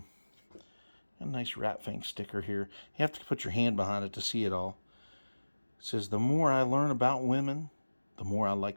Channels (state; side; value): inverted; both; correlation -1.00